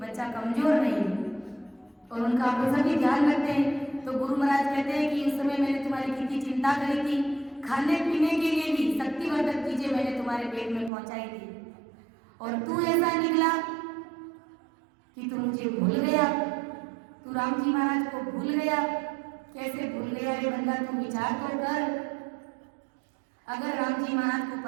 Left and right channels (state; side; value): drops out; left; at 10.9 s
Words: बच्चा कमजोर नहीं, और उनका पोषण भी ध्यान रखते हैं। तो गुरु महाराज कहते हैं कि उस समय मैंने तुम्हारी कितनी चिंता करी थी, खाने पीने के लिए भी शक्तिवर्धक चीजें मैंने तुम्हारे पेट में पहुंचाई थी, और तू ऐसा निकला कि तू मुझे भूल गया, तू राम जी महाराज को भूल गया। कैसे भूल गया रे बंदा? तू विचार तो कर। अगर राम जी महाराज को